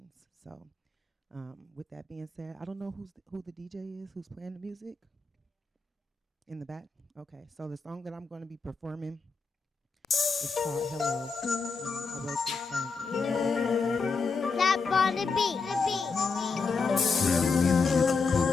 So with that being said, I don't know who the DJ is, who's playing the music in the back. Okay, so the song that I'm going to be performing is called Hello. I wrote this song. Tap on the beat.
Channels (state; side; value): quieter; right; 4.5 dB